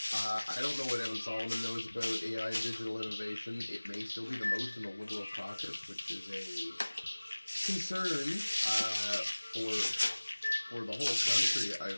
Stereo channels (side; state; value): both; inverted; correlation -1.00